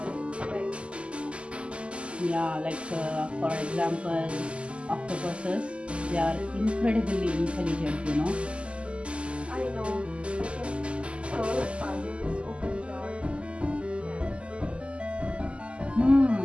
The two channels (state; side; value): late; left; 0.054 ms